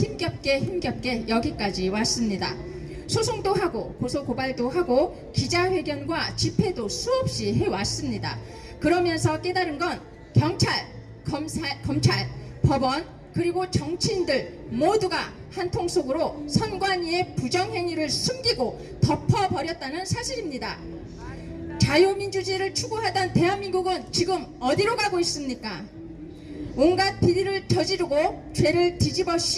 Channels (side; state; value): both; identical; correlation 1.00